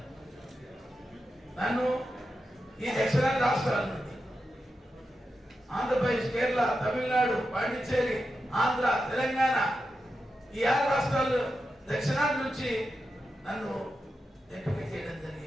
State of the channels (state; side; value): normal; both; correlation 0.89